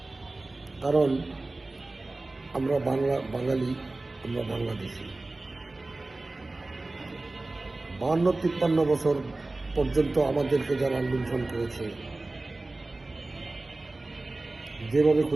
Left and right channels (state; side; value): quieter; left; 3.1 dB